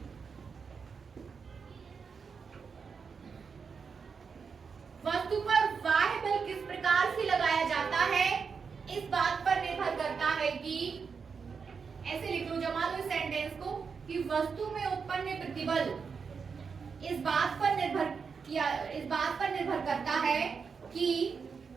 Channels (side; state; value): left; quieter; 5.7 dB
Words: वस्तु पर बाह्य बल किस प्रकार से लगाया जाता है, इस बात पर निर्भर करता है कि, ऐसे लिख लो, जमा लो इस सेंटेंस को, कि वस्तु में उत्पन्न प्रतिबल इस बात पर निर्भर करता है कि,